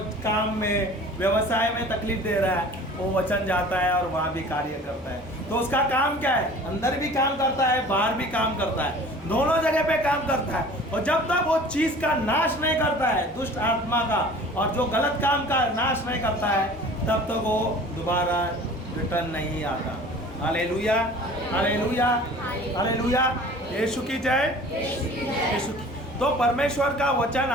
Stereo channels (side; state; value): both; normal; correlation 0.44